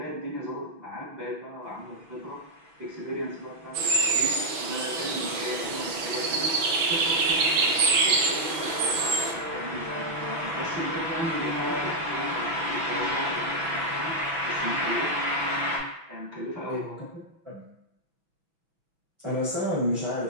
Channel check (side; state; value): left; late; 6.0 ms